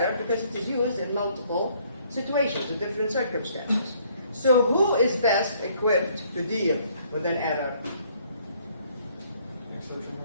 because it is used in multiple situations, in different circumstances. So who is best equipped to deal with an error?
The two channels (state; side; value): inverted; both; correlation -0.64